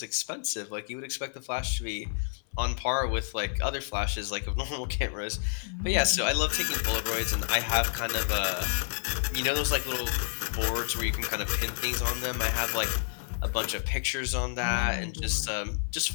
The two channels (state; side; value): silent; right; 58 dB below the other